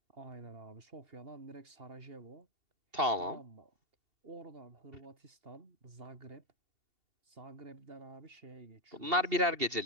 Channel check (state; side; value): late; left; 2.7 ms